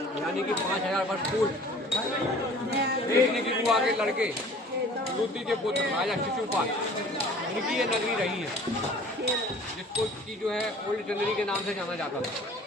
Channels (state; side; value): normal; both; correlation 0.48